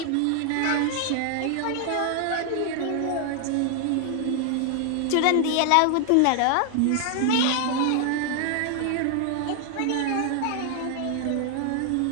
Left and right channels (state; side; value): different; both; correlation 0.00